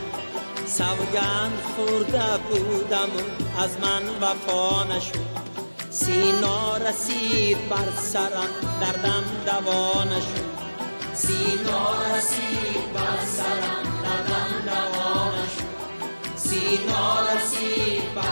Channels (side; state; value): both; inverted; correlation -1.00